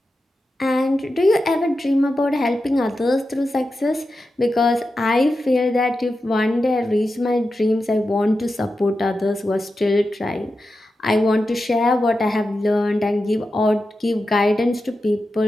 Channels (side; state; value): both; normal; correlation 0.91